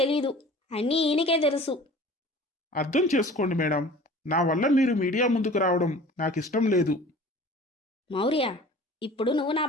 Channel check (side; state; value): both; normal; correlation 0.44